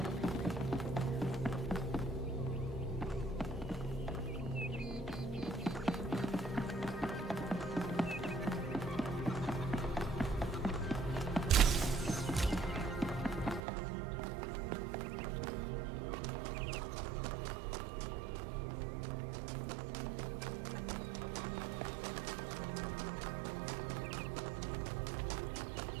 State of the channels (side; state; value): left; drops out; at 13.7 s